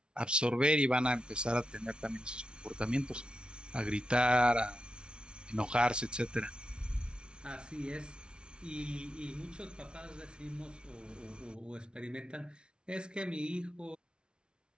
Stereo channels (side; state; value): left; late; 0.056 ms